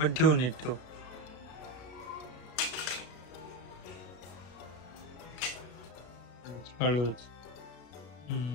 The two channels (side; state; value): right; late; 33 ms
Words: ठेवून नीट ठेवू. हळूच.